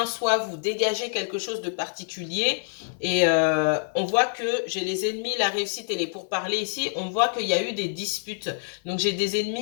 soit vous dégagez quelque chose de particulier. Et on voit que j'ai les ennemis, la réussite et les pourparlers ici. On voit qu'il y a eu des disputes. Donc, j'ai des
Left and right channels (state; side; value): silent; right; 61 dB below the other